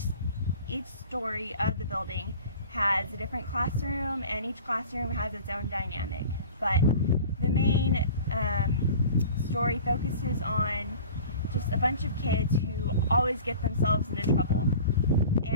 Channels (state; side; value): inverted; both; correlation -0.41